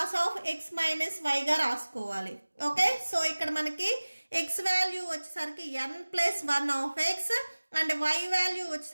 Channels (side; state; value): both; inverted; correlation -1.00